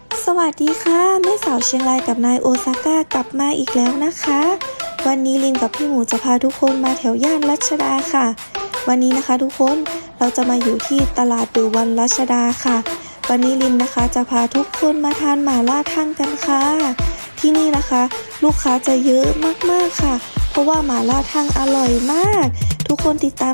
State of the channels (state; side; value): inverted; both; correlation -1.00